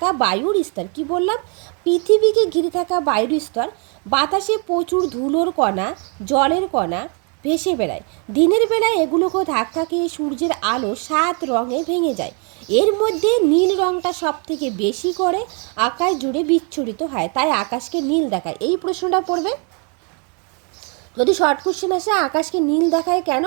বায়ুর স্তর। কি বললাম? পৃথিবীকে ঘিরে থাকা বায়ুর স্তর। বাতাসে প্রচুর ধুলোর কণা, জলের কণা ভেসে বেড়ায়। দিনের বেলায় এগুলোকে ধাক্কা খেয়ে সূর্যের আলো 7 রঙে ভেঙে যায়। এর মধ্যে নীল রঙটা সব থেকে বেশি করে আকাশ জুড়ে বিচ্ছুরিত হয়, তাই আকাশকে নীল দেখায়। এই প্রশ্নটা পড়বে। যদি শর্ট কোশ্চেন আসে আকাশকে নীল দেখায় কেন,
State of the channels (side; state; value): left; quieter; 36.8 dB